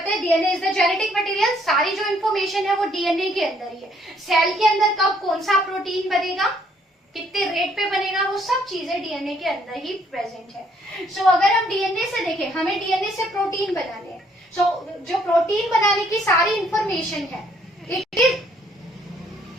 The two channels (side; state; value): both; normal; correlation 0.66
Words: है DNA is the genetic material, सारी जो इन्फॉर्मेशन है वो डीएनए के अंदर ही है। सेल के अंदर कब कौन सा प्रोटीन बनेगा, कितने रेट पे बनेगा, वो सब चीजें डीएनए के अंदर ही प्रेजेंट है। सो अगर हम डीएनए से देखें, हमें डीएनए से प्रोटीन बनाने हैं, सो जो प्रोटीन बनाने की सारी इंफॉर्मेशन है इट इज